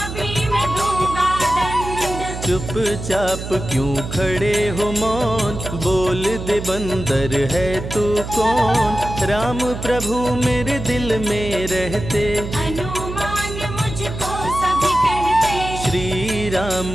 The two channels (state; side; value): noise; right; hum, 8 dB below the sound